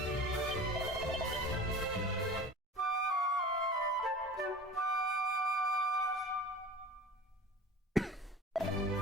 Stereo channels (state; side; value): normal; both; correlation 0.39